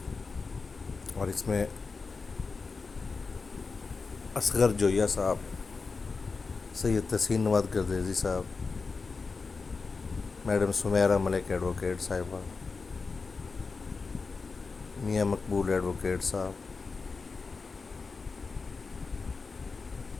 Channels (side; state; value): right; quieter; 4.5 dB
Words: اور اس میں اصغر جویہ صاحب، سید تحسین نواد گردیزی صاحب، میڈم سمیرہ ملک ایڈوکیٹ صاحبہ، میاں مقبول ایڈوکیٹ صاحب،